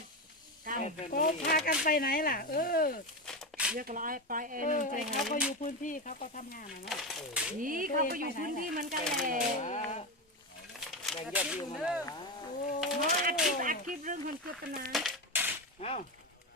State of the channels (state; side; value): normal; both; correlation 0.16